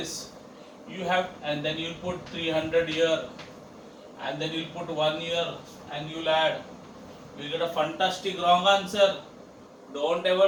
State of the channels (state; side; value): identical; both; correlation 1.00